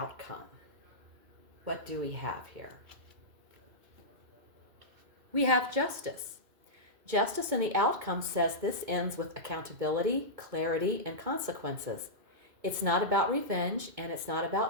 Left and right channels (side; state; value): left; late; 2.2 ms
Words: What do we have here? We have justice. Justice in the outcome says this ends with accountability, clarity, and consequences. It's not about revenge, and it's not